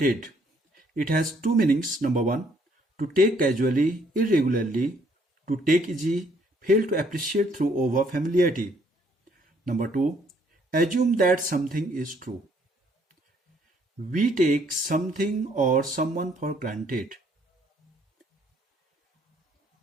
It has two meanings. Number one, to take casually, irregularly, to take easy, fail to appreciate through over familiarity. Number two, assume that something is true. We take something or someone for granted.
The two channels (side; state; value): both; normal; correlation 0.66